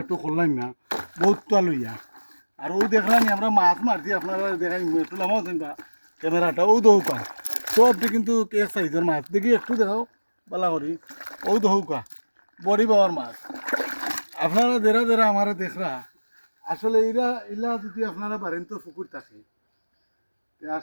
একটু করলাম না বহুত তা লইয়া আর ও দেখলাম আমরা মাছ মারছি আপনারা দেখাই একটু নামাও বা ক্যামেরাটা ও দৌকা সবটি কিন্তু এক সাইজের মাছ দেখি একটু দেখাও বালা করি ও দৌকা বড়ি পাওয়ার মাছ আপনারা দেরা দেরা আমার দেখরা আসলে ইলা যদি আপনারা পারেন তো পুকুর থাকে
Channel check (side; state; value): both; inverted; correlation -1.00